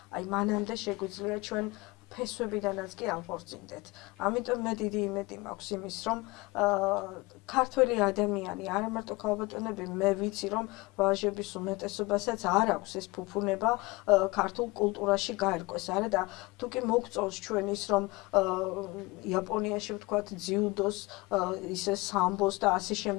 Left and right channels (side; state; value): right; quieter; 23.5 dB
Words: აი მანამდე შეგვიძლია ჩვენ ფესვებიდანაც კი აღორწინდეთ. ამიტომ მე დიდი იმედი მაქვს იმის, რომ ქართველი ადამიანი, არა მარტო ქალბატონები, მე ვიცი, რომ ვაჟების უმეტესობასაც არ აქვს ეს ფუფუნება ქართულ კულტურაში გაერკვეს, არა და თუ კი მოგწონს ჩვენ ის, რომ იაპონიაში ვთქვათ ძიუდოს, ისე სამბოს და ასე